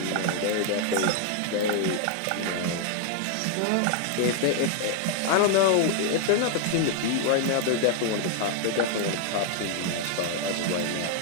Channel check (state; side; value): different; both; correlation 0.00